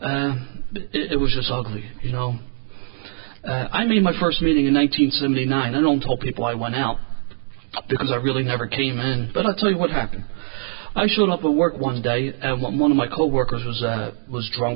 It was just ugly, you know. I made my first meeting in 1979. I don't tell people I went out because I really never came in, but I'll tell you what happened. I showed up at work one day, and one of my coworkers was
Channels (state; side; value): silent; left; 62 dB below the other